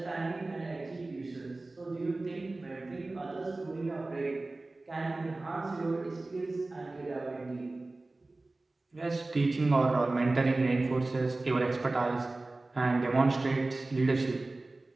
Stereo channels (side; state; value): left; quieter; 3.1 dB